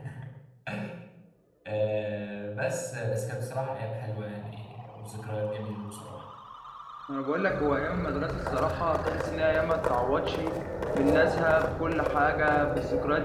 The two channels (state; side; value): identical; both; correlation 1.00